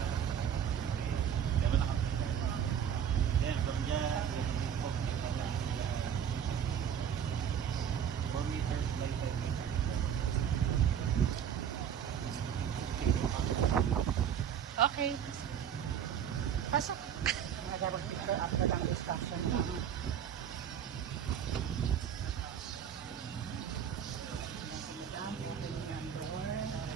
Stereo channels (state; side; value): quieter; left; 8.7 dB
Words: Okay. Pasok. Mag-picture after ang discussion.